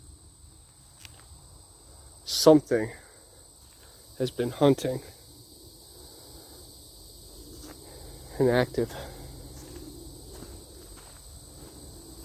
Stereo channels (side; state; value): both; identical; correlation 1.00